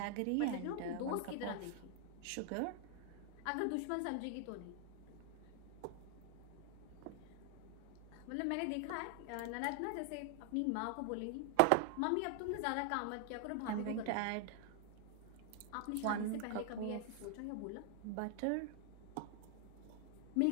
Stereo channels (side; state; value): both; different; correlation 0.00